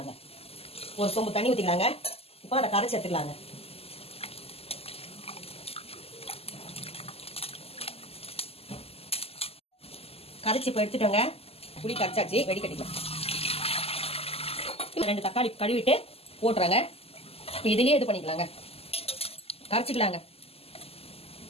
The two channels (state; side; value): late; right; 0.29 ms